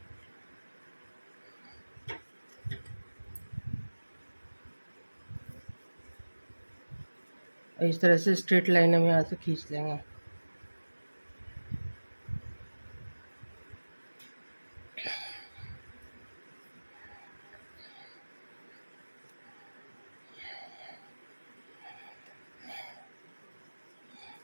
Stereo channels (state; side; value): inverted; both; correlation -1.00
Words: इस तरह से स्ट्रेट लाइन हम यहाँ से खींच लेंगे।